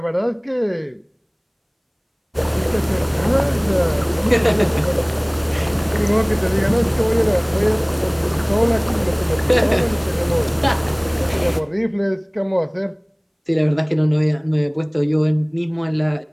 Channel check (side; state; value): both; identical; correlation 1.00